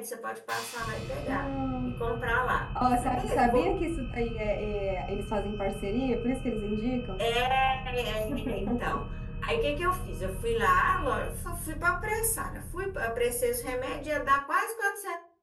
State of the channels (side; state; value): both; identical; correlation 1.00